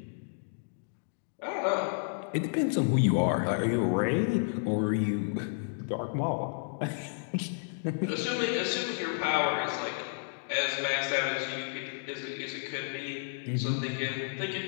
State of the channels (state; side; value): silent; right; digital silence